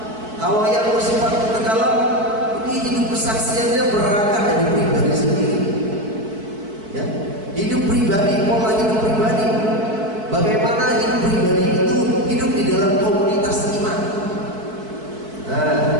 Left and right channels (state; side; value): late; left; 4.6 ms